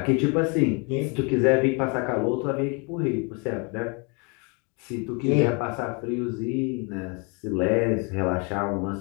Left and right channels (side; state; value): right; quieter; 32.8 dB